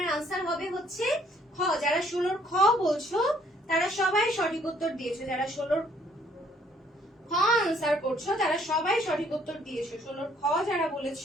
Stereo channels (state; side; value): normal; both; correlation 0.64